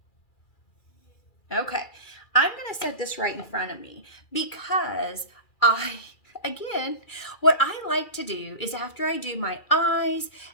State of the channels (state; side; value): late; right; 2.4 ms